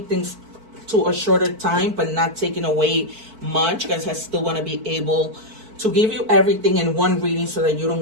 things to a shorter time but not taking away much, because I still want to be able to give you everything in one reading so that you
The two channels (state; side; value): late; left; 4.5 ms